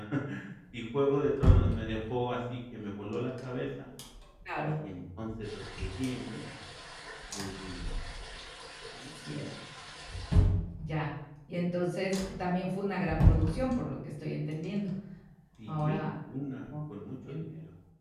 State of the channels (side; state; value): both; identical; correlation 1.00